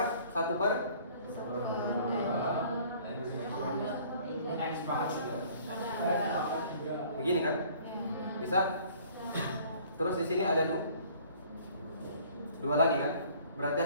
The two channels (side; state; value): both; inverted; correlation -0.54